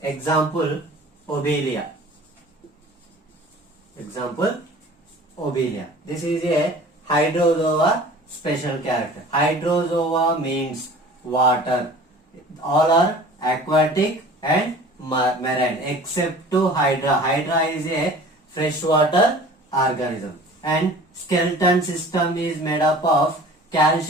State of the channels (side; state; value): both; normal; correlation 0.44